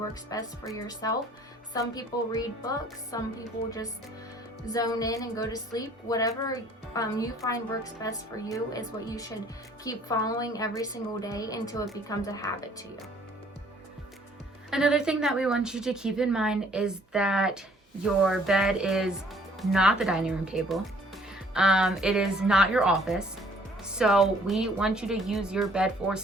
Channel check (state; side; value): normal; both; correlation 0.58